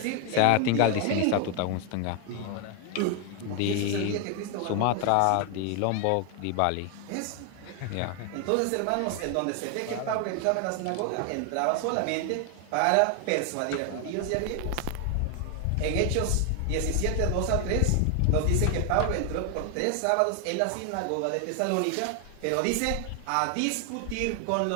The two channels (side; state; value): both; different; correlation 0.01